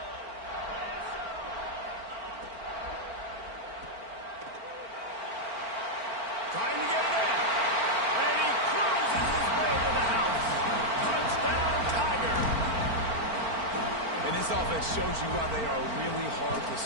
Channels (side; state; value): left; late; 4.4 ms